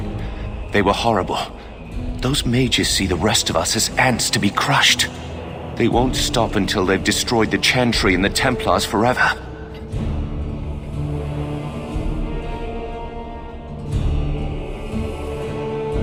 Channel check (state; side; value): identical; both; correlation 1.00